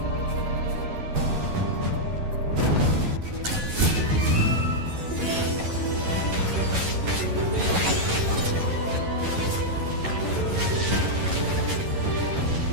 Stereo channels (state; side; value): late; left; 11 ms